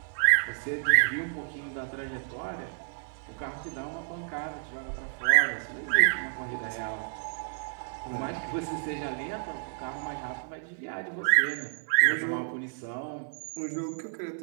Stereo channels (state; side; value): silent; left; 58 dB below the other